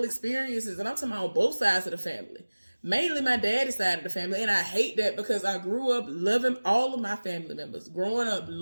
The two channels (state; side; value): inverted; both; correlation -1.00